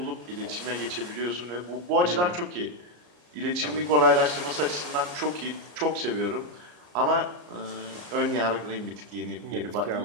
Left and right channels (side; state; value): left; late; 34 ms